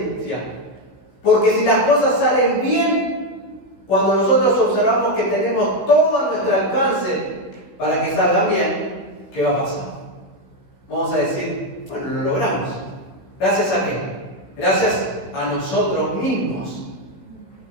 Porque si las cosas salen bien, cuando nosotros observamos que tenemos todo a nuestro alcance para que salgan bien, ¿qué va a pasar? Vamos a decir, bueno, lo logramos. ¿Gracias a qué? Gracias a nosotros mismos.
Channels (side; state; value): right; late; 16 ms